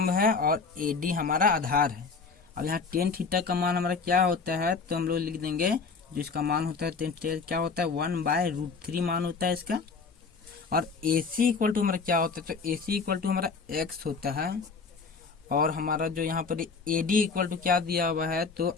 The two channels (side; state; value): right; quieter; 4.8 dB